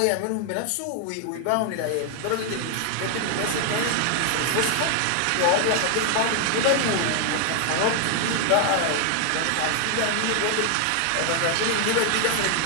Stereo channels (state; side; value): different; both; correlation 0.00